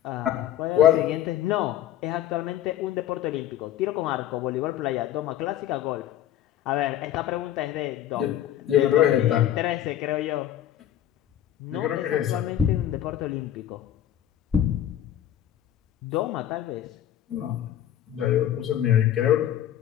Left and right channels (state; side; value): quieter; right; 11.5 dB